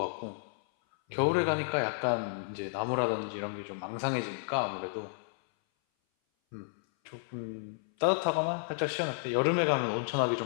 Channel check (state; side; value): silent; right; 57 dB below the other